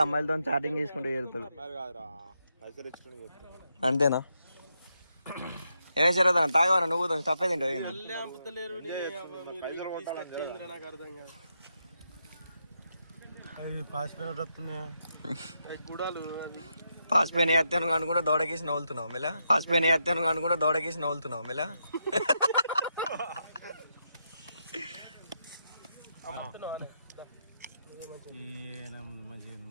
అమ్మాయిలతో చాటింగ్ చేసుకుంటూ చేరుతాడు అంతేనా ఏమే శరదన్న తాగవరా నువ్వు తప్పే తింటావు నాకు అర్థం కాదు గుడాలు పాసిపోయిన ఎత్తాను అనుకుంటే దోడకేసి నవ్వులుతున్నావు మెలా పాసిపోయిన ఎత్తాను అనుకుంటే దోడకేసి నవ్వులుతున్నావు మెలా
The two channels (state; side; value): inverted; both; correlation -0.82